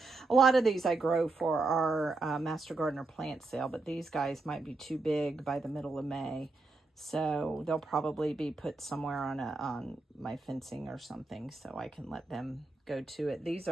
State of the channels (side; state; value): left; quieter; 3.4 dB